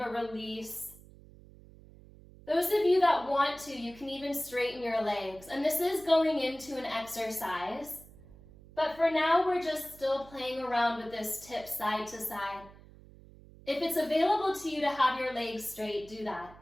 a release. Those of you that want to, you can even straighten your legs. And this is going into an exercise. But for now, we're just still playing around with this tip side to side. If it's available to you to have your legs straight, do that.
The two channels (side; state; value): right; noise; hum, 21 dB below the sound